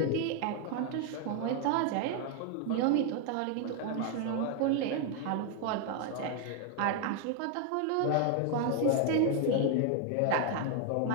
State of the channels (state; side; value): different; both; correlation 0.00